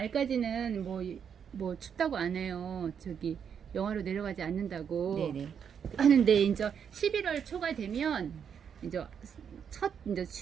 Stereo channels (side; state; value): left; quieter; 7.6 dB